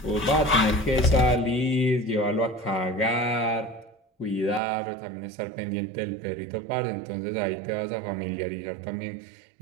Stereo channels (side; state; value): left; drops out; at 4.6 s